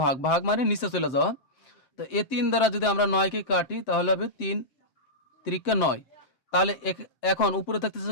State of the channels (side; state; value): right; late; 7.7 ms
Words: ভাগ, ভাগ মানে নিচে চলে যাওয়া। তো এই 3 দ্বারা যদি আমরা 9কে কাটি তাহলে হবে 3 × 9। তাহলে এখন উপরে থাকতেছে